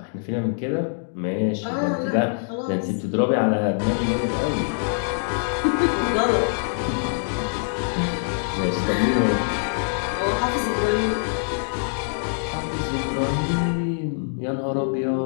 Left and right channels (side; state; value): right; silent; digital silence